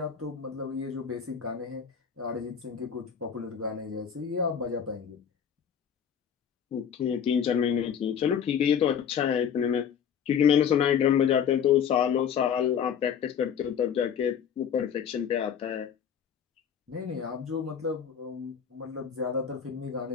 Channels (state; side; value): quieter; right; 7.9 dB